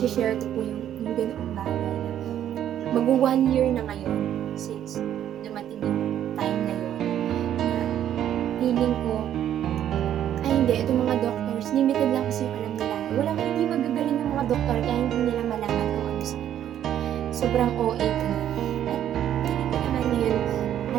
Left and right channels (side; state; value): left; quieter; 10.7 dB